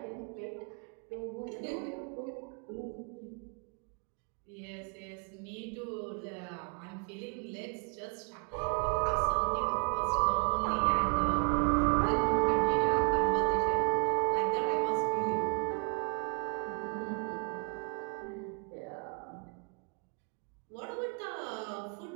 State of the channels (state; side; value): quieter; left; 36.5 dB